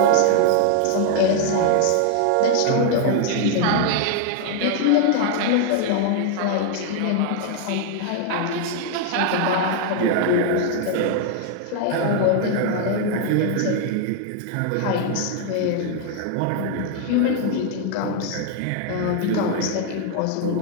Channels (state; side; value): different; both; correlation 0.00